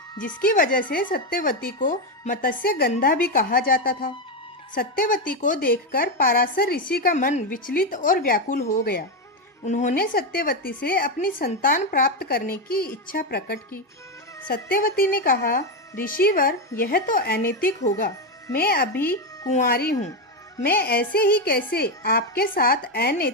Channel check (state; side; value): normal; both; correlation 0.08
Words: जिसकी वजह से सत्यवती को मत्स्य गंधा भी कहा जाता था। सत्यवती को देखकर पाराशर ऋषि का मन विचलित और व्याकुल हो गया। उन्होंने सत्यवती से अपनी संतान प्राप्त करने की इच्छा प्रकट की। सत्यवती ने कहा, ऋषिवर, यह तो अनैतिक होगा। मैं अभी कुंवारी हूँ। मैं ऐसे ही कैसे आपके साथ